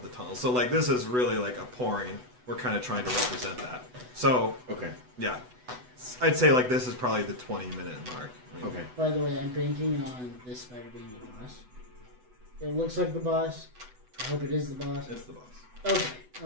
the tunnel. So, like, this is really, like, a pouring. We're kind of trying to represent that. So, Okay. yeah. I'd say, like, this is probably the 20-minute mark. I mean, Okay. By the way, I'm banking on this spider being the boss. It looks like the boss. I hope it is the boss. It's the boss. Okay. I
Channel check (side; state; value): left; late; 8.0 ms